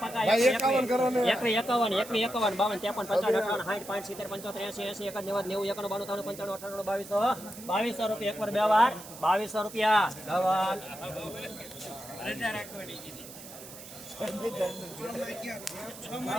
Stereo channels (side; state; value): right; noise; hiss, 15 dB below the sound